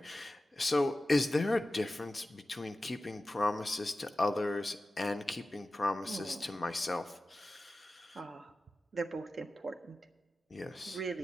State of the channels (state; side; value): normal; both; correlation 0.94